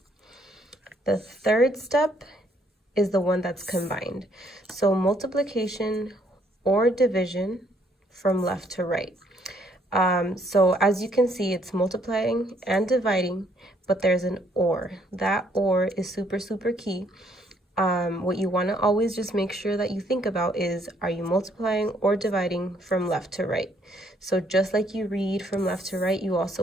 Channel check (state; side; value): normal; both; correlation 0.68